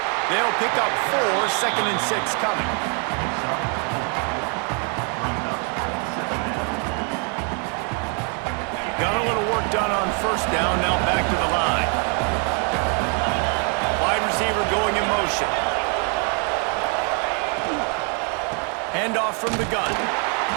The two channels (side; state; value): left; quieter; 38.3 dB